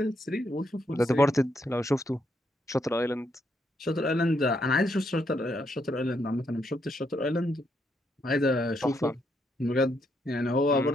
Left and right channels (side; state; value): both; normal; correlation 0.77